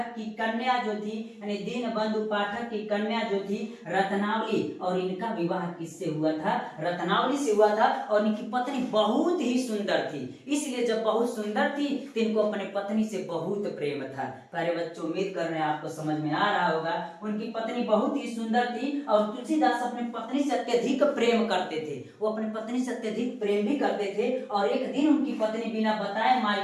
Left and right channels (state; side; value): identical; both; correlation 1.00